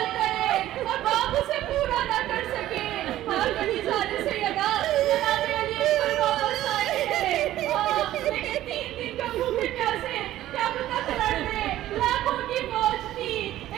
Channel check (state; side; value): quieter; left; 13.9 dB